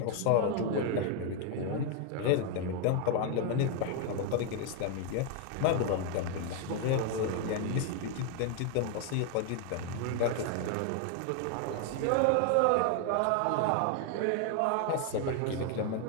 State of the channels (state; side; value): different; both; correlation 0.00